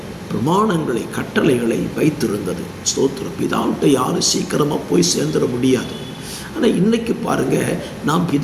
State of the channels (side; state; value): both; identical; correlation 1.00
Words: பிரமாணங்களை, கட்டளைகளை வைத்திருந்தது. ஸ்தோத்திரம். பிதாவிட்ட யாரும் சீக்கிரமாக போய் சேர்ந்துட முடியாது. ஆனால் இன்றைக்கி பாருங்கள், நாம்